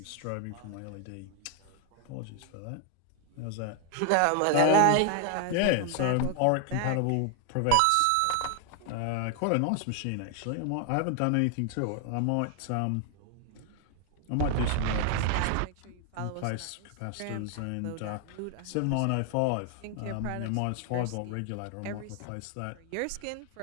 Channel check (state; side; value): different; both; correlation 0.00